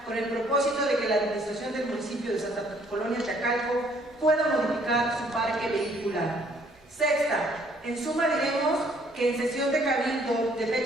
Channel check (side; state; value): both; normal; correlation 0.63